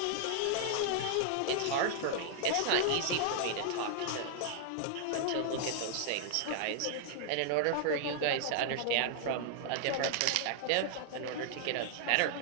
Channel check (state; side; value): different; both; correlation -0.01